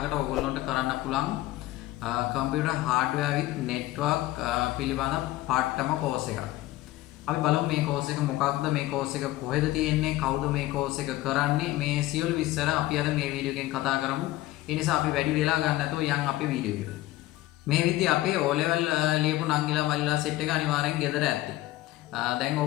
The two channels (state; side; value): quieter; right; 16.5 dB